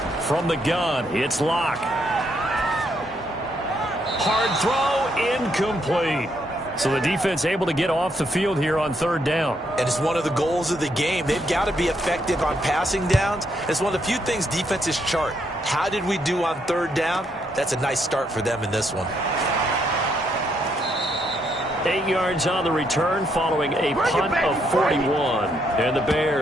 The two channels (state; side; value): normal; both; correlation 0.75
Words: From the gun, it's Locke. Hard throw, incomplete. So the defense able to get off the field here on 3rd down. And it's one of the goals of the game. They've got to be effective on passing downs. It's one of the few things defenses chart. How did we do on 3rd down? That's a nice start for them in this one. 8 yards on the return following a punt of 41. And the